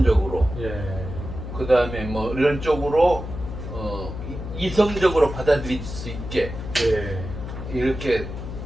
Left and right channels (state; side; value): noise; left; hum, 8 dB below the sound